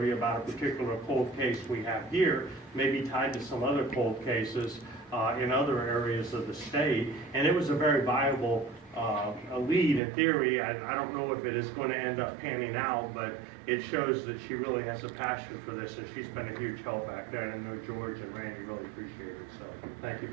about a particular cold case we have here, maybe tied to some other cold cases in other areas of the state, and it was a very viable lead in theory. I don't know if it is going to end up panning out, but it shows that she really has a passion for this, and she's been a huge help back there, and I know George and Randy really appreciate it, so thank you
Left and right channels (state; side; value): drops out; left; at 10.0 s